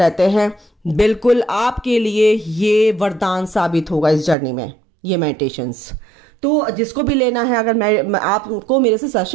हैं। बिल्कुल आपके लिए ये वरदान साबित होगा इस जर्नी में, ये मेडिटेशंस। तो जिसको भी लेना है, अगर आपको मेरे से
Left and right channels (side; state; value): left; drops out; at 4.4 s